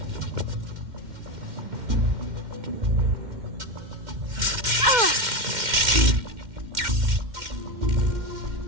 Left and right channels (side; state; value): left; late; 2.1 ms